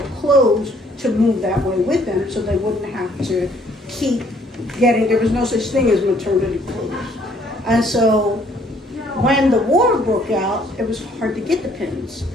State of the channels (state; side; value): normal; both; correlation 0.63